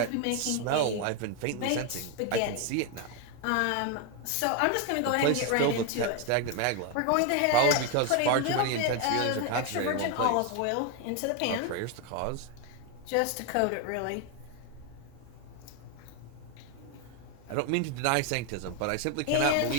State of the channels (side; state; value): both; different; correlation 0.01